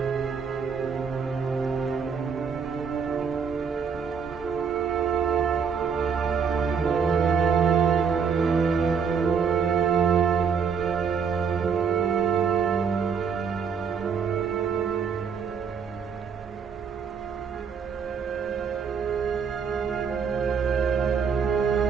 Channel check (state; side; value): quieter; left; 6.3 dB